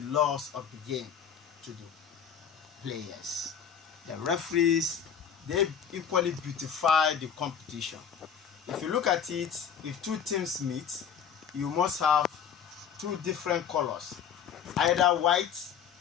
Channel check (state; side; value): quieter; right; 7.8 dB